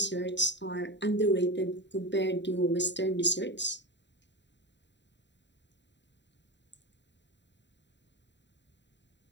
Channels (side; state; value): right; late; 0.52 ms